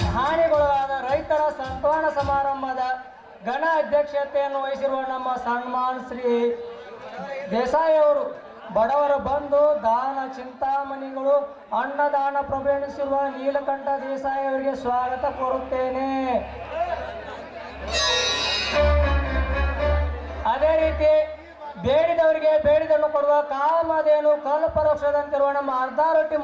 ಹಾನಿಗೊಳಗಾದ ರೈತರ ಸಂತಾನ ಸಮಾರಂಭದ ಘನ ಅಧ್ಯಕ್ಷತೆಯನ್ನು ವಹಿಸಿರುವ ನಮ್ಮ ಸನ್ಮಾನ್ ಶ್ರೀ ದೇಸಾಯಿ ಅವರು ಬಡವರ ಬಂಧು ದಾನ ಚಿಂತಾಮಣಿಗಳು ಅನ್ನದಾನ ಪ್ರಭೆಣಿಸಿರುವ ನೀಲಕಂಠ ದೇಸಾಯಿ ಅವರಿಗೆ ಸ್ವಾಗತ ಕೋರುತ್ತೇನೆ. ಅದೇ ರೀತಿ ಬೇಡಿದವರಿಗೆ ಬೇಡಿದನ್ನು ಕೊಡುವ ಕಾಮಧೇನು ಕಲ್ಪವೃಕ್ಷದಂತಿರುವ ನಮ್ಮ ಅರ್ಧಾರೊಟ್ಟಿ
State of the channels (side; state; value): both; identical; correlation 1.00